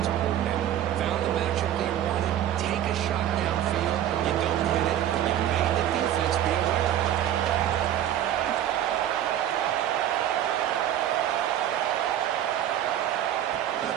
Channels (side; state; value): left; quieter; 11.3 dB